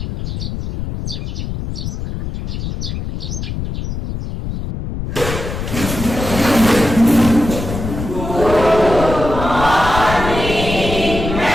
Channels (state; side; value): noise; left; rumble, 6 dB below the sound